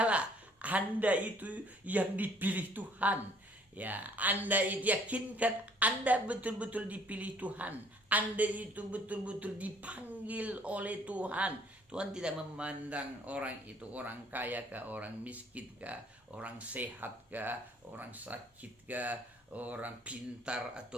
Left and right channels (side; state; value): both; normal; correlation 0.59